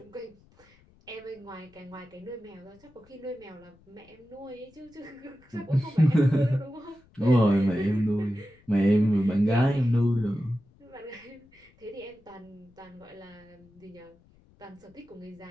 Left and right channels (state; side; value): noise; left; rumble, 29 dB below the sound